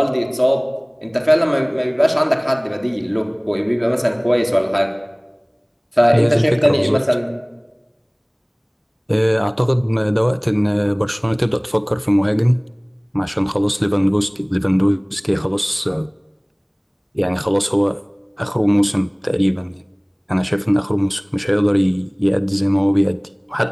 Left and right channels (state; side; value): identical; both; correlation 1.00